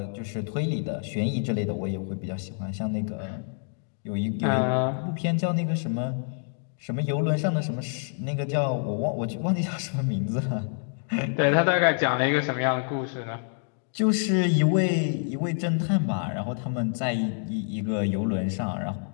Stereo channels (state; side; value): silent; right; 60 dB below the other